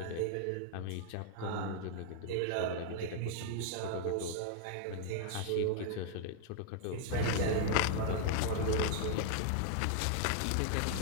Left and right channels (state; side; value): different; both; correlation -0.01